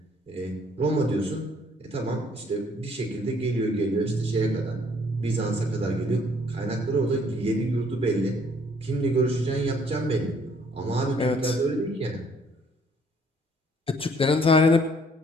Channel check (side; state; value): both; normal; correlation 0.62